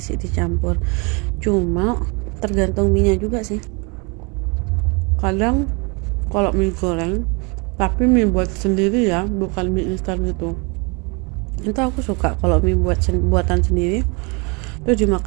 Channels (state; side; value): quieter; left; 30.8 dB